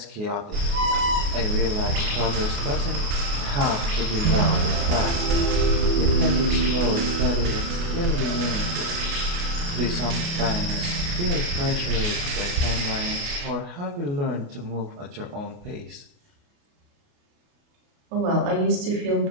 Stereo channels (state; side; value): late; left; 29 ms